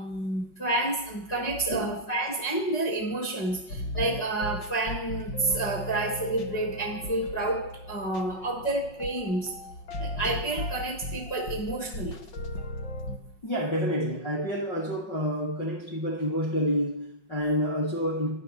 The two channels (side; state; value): right; late; 5.5 ms